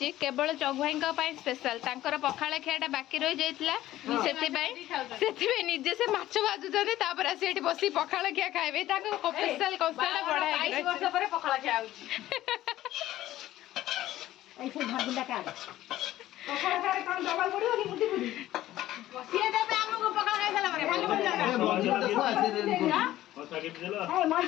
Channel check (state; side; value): quieter; right; 14.5 dB